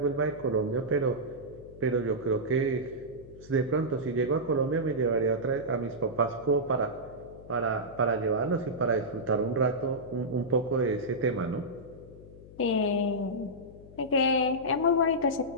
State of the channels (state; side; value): noise; left; hum, 19 dB below the sound